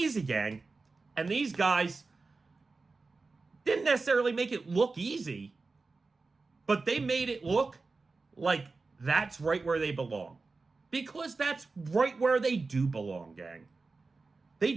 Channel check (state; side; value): quieter; left; 3.9 dB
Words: gang. And these guys didn't necessarily make it look easy, but they made it look like that's right where they belong. Because that's right where they do belong, gang. They